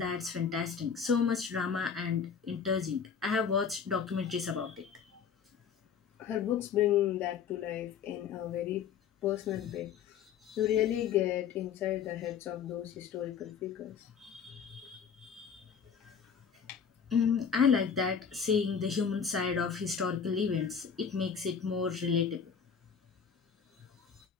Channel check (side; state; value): right; quieter; 7.0 dB